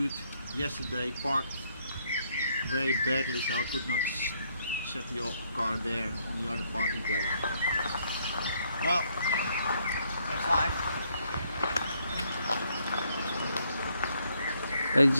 yesterday parked very badly, so I could not set the car there in the other parking place. Well, that's life. Ladies and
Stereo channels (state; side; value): inverted; both; correlation -0.70